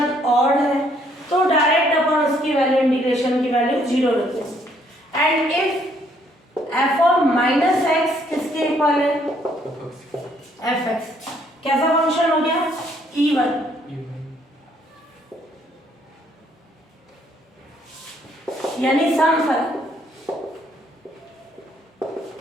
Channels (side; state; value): both; normal; correlation 0.67